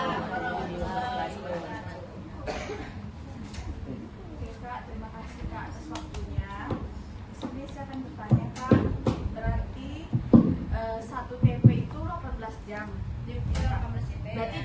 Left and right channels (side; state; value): both; identical; correlation 1.00